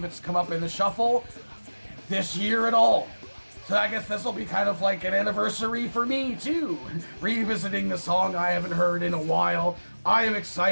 it's come up in the shuffle this year at all. So I guess this will be kind of like an anniversary for me too, revisiting the song I haven't heard in a while. I am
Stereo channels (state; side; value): inverted; both; correlation -1.00